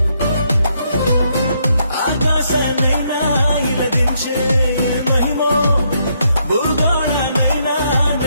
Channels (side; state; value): both; inverted; correlation -0.75